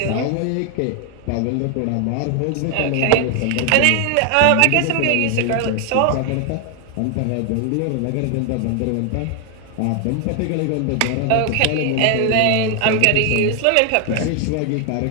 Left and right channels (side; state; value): both; different; correlation 0.00